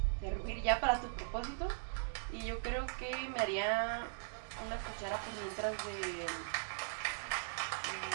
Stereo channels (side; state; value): left; silent; digital silence